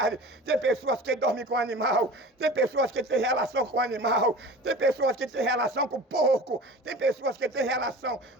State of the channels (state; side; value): normal; both; correlation 0.38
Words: Tem pessoas que dormem com o animal, tem pessoas que têm relação com o animal, tem pessoas que têm relação com o porco, tem pessoas que têm relação